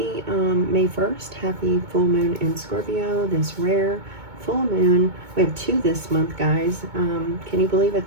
May 1st. Happy full moon in Scorpio, this rare full moon. We have two this month, guys. Can you believe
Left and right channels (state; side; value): late; left; 2.2 ms